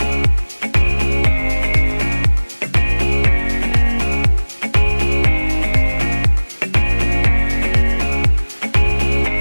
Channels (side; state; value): both; inverted; correlation -1.00